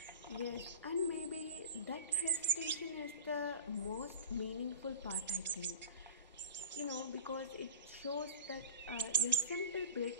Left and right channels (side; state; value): both; inverted; correlation -0.38